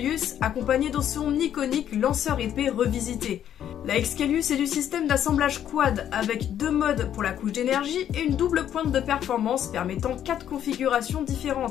accompagnée de son iconique lanceur épée revisité. La Excalius est du système d'assemblage quad avec 2 modes pour la couche d'énergie et une double pointe de performance permettant 4 configurations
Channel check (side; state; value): right; quieter; 10.2 dB